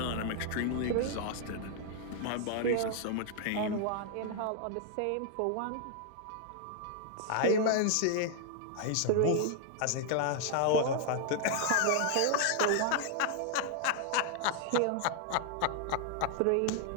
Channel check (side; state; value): both; different; correlation 0.00